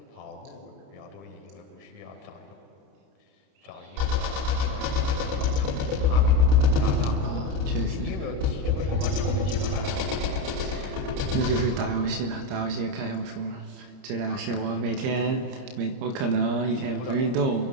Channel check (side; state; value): left; late; 30 ms